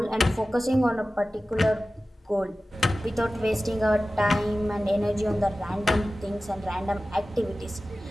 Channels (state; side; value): normal; both; correlation 0.96